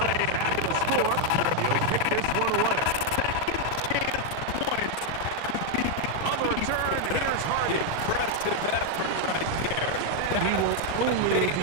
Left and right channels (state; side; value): different; both; correlation 0.00